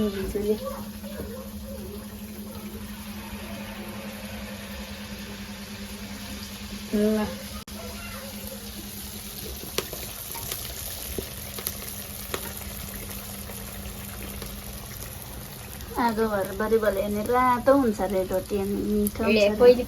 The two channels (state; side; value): identical; both; correlation 1.00